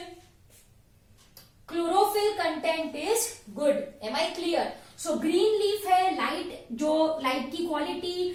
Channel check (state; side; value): identical; both; correlation 1.00